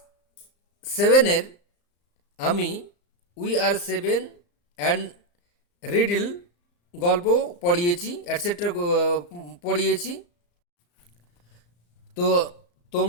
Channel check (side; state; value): right; late; 34 ms